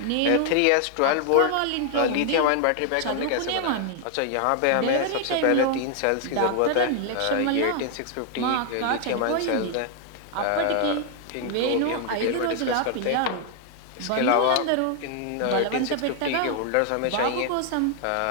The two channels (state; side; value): different; both; correlation 0.00